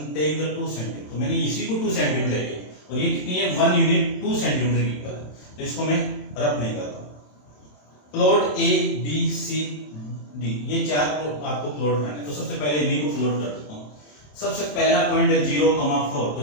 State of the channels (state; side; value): late; right; 27 ms